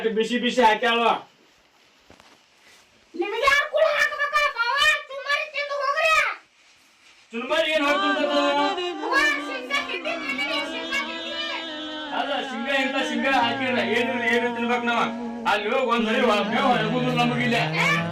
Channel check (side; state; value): both; identical; correlation 1.00